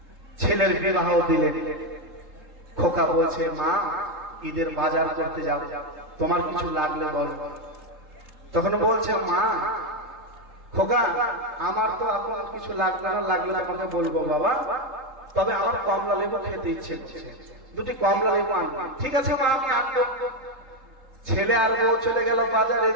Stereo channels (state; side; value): late; left; 3.7 ms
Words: ছেলের বিবাহ দিলেন। খোকা বলছে, মা ঈদের বাজার করতে যাও, তোমার কিছু লাগলে বলো। তখন বলছে, মা খোকা আমার তো এখন কিছু লাগবে না, লাগলে আমাকে বলবো বাবা, তবে আমার কমলা লেবু খেতে ইচ্ছে করছে, দুটি কমলা লেবু আনবো। ঠিক আছে মা, আমি আনবো। ছেলে আর বউ চলে গেল বাজার,